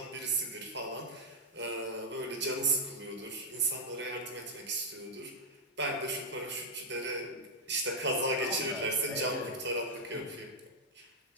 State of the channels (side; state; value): both; normal; correlation -0.03